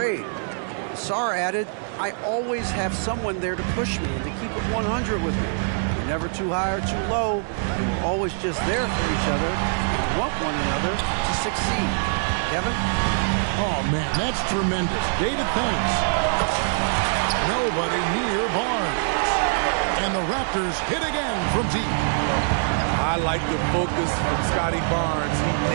Asar added, I always have someone there to push me and to keep it 100 with me. We're never too high or too low, and we're always just there for each other and want one another to succeed. Kevin? Oh, man, that's tremendous. David, thanks. Nobody near Barnes. And the Raptors hit again from deep. I like the focus from Scotty Barnes. He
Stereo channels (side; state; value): left; silent; digital silence